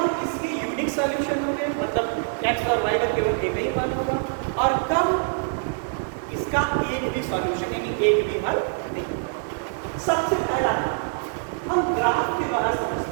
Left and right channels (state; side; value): silent; left; 60 dB below the other